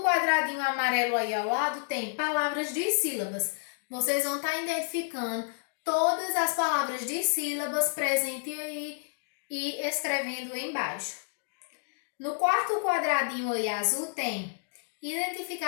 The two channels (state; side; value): silent; right; digital silence